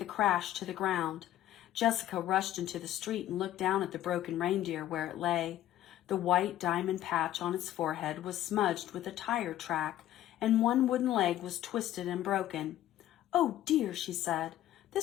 a crash to the ground. Jessica rushed into the street and looked down at the broken reindeer where it lay. The white diamond patch on its forehead was smudged with a tire track, and one wooden leg was twisted and broken. "Oh dear," she said,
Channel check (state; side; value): quieter; right; 13.2 dB